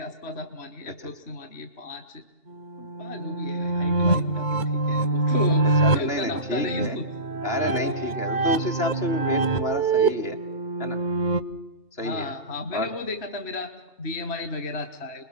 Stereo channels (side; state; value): right; late; 2.8 ms